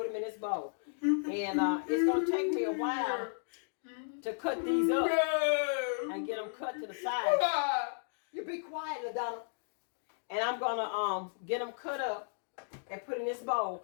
them in this bowl. And it's going to take me a while to cut these up and get them cut to the side. You be quiet, LaDonna. And I'm gonna get them cut up and put in this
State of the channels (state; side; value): silent; right; digital silence